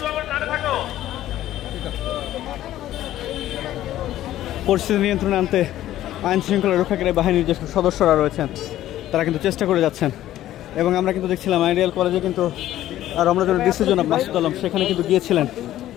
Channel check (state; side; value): quieter; right; 13.5 dB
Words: পরিস্থিতি নিয়ন্ত্রণে আনতে আইন শৃঙ্খলা রক্ষাকারী বাহিনীর যে সদস্যরা রয়েছেন তারা কিন্তু চেষ্টা করে যাচ্ছেন। এবং আমরা কিন্তু দেখছিলাম আইডিয়াল কলেজে কিন্তু রমনাজনের ডিসি জনাব মাসুদ আলম সেখানে কিন্তু গিয়েছিলেন